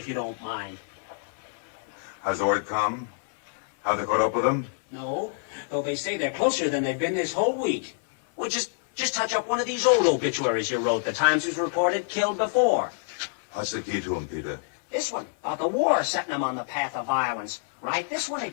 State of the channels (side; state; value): right; silent; digital silence